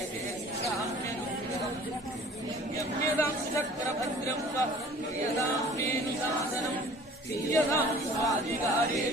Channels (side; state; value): both; normal; correlation 0.48